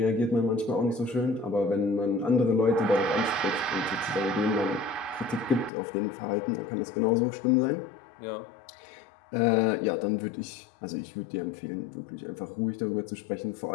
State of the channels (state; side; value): drops out; right; at 5.7 s